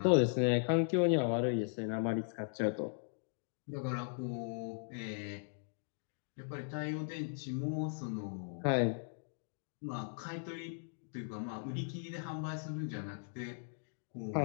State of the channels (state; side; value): silent; right; digital silence